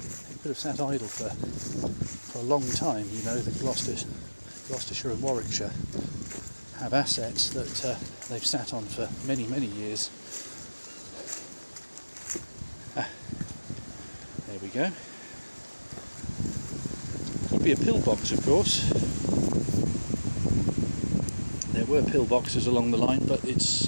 could have sat idle for a long time. The Gloucestershire and Warwickshire have assets that they've sat on for many, many years. There we go. Could be a pillbox, of course. There were pillboxes along the line, but it's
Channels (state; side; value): inverted; both; correlation -1.00